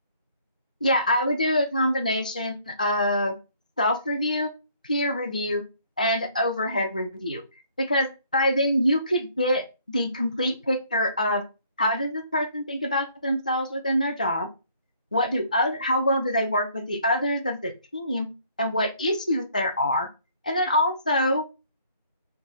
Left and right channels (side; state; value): both; inverted; correlation -0.61